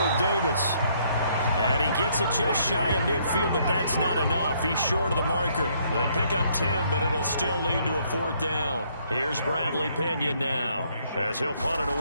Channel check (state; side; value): inverted; both; correlation -0.68